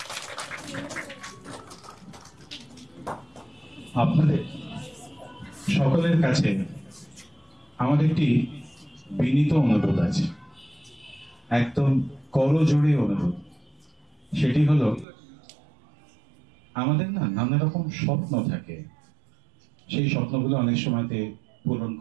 আপনাদের সকলের কাছে আমার একটি বিনীত অনুরোধ আছে, একদম করজোড়ে অনুরোধ। সেটি হলো, আমাদের না নানা রকম স্বপ্ন থাকে, সেই স্বপ্নগুলো অনেক সময়তে পূরণ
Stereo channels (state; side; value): drops out; left; at 15.1 s